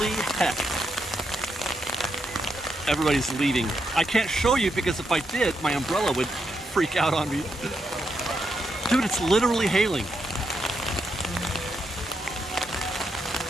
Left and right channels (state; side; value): normal; both; correlation 0.81